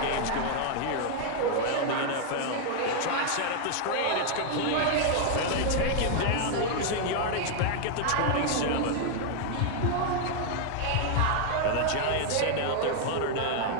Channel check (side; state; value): both; different; correlation 0.00